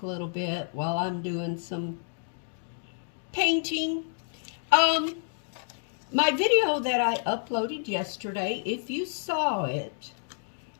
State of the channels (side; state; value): right; silent; digital silence